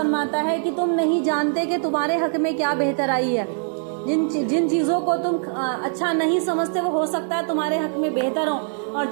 ہے کہ تم نہیں جانتے کہ تمہارے حق میں کیا بہتر آئی ہے۔ جن چیزوں کو تم اچھا نہیں سمجھتے وہ ہو سکتا ہے تمہارے حق میں بہتر ہوں، اور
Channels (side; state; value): left; silent; digital silence